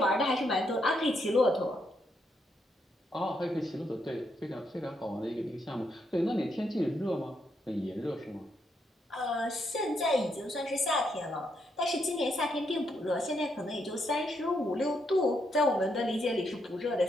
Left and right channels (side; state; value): both; normal; correlation 0.78